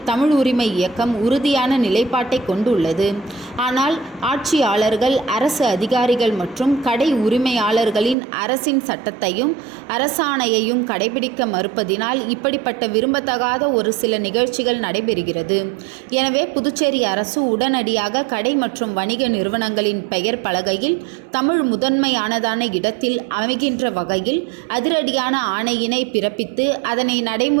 தமிழ் உரிமை இயக்கம் உறுதியான நிலைப்பாட்டை கொண்டுள்ளது. ஆனால் ஆட்சியாளர்கள், அரசு அதிகாரிகள் மற்றும் கடை உரிமையாளர்களின் அரசின் சட்டத்தையும் அரசாணையையும் கடைபிடிக்க மறுப்பதினால் இப்படிப்பட்ட விரும்பத்தகாத ஒரு சில நிகழ்ச்சிகள் நடைபெறுகிறது. எனவே புதுச்சேரி அரசு உடனடியாக கடை மற்றும் வணிக நிறுவனங்களின் பெயர் பலகையில் தமிழ் முதன்மையானதான இடத்தில் அமைகின்ற வகையில் அதிரடியான ஆணையினை பிறப்பித்து அதனை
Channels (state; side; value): drops out; left; at 8.2 s